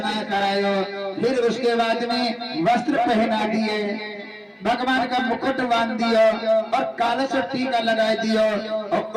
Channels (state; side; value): identical; both; correlation 1.00